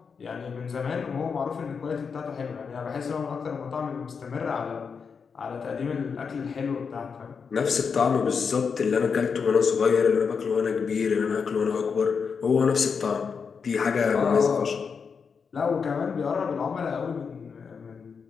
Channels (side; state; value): right; quieter; 5.8 dB